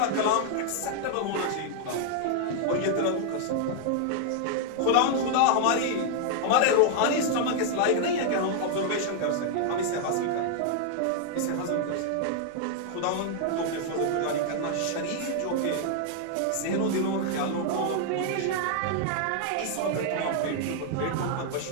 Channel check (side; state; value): both; different; correlation 0.00